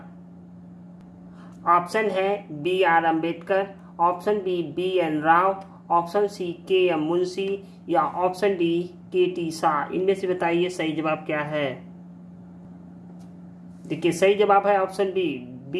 ऑप्शन है B.R. Ambedkar, option B B.N. Rao, option C K.M. Munshi या ऑप्शन डी K.T. शाह। इनमें से बताइए सही जवाब क्या है। देखिए सही जवाब है ऑप्शन बी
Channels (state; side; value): identical; both; correlation 1.00